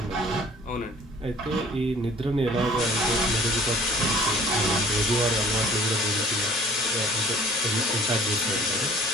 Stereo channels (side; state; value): both; normal; correlation 0.52